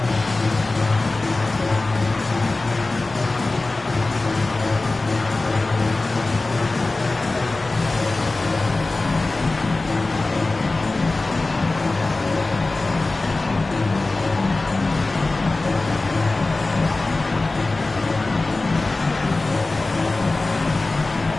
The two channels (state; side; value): quieter; right; 3.2 dB